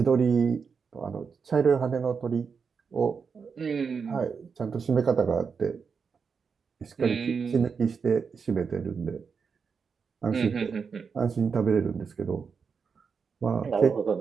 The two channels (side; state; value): left; quieter; 5.8 dB